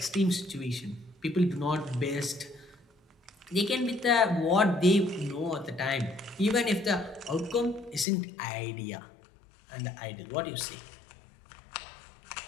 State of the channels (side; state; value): right; drops out; at 8.1 s